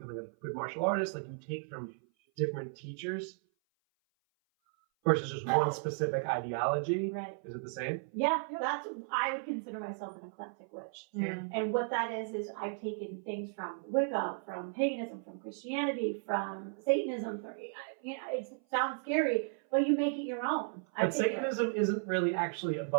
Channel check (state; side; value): silent; left; 55 dB below the other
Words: a good martial artist, like you take from different teachers versus just one specific ideology. Right. Is it the same? Yeah, I would consider myself an eclectic witch. Yeah. And what that is I've taken things from Wicca, from paganism, from Christianity, from Satanism. It sounds scary, but you make it your own. But Satanism isn't really actually